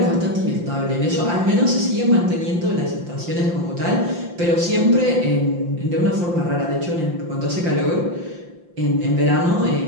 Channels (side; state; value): left; late; 5.8 ms